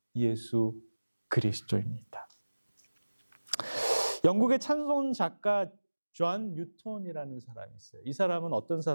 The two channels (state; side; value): inverted; both; correlation -1.00